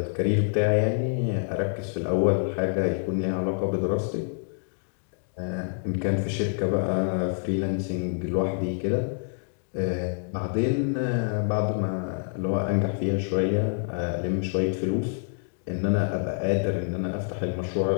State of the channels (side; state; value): right; silent; digital silence